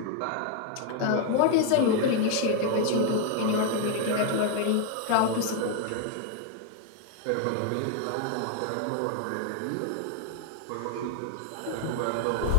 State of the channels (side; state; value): both; different; correlation 0.01